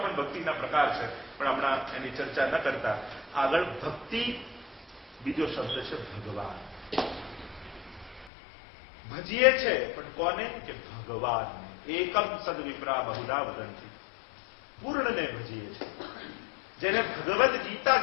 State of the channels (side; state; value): right; drops out; at 8.3 s